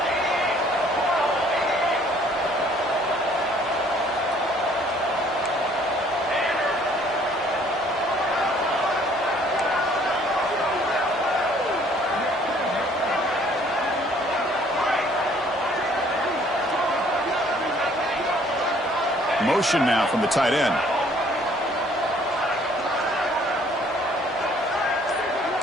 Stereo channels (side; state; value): both; normal; correlation 0.59